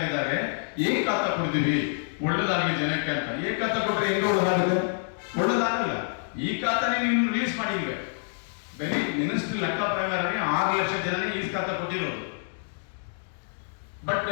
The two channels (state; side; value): silent; right; digital silence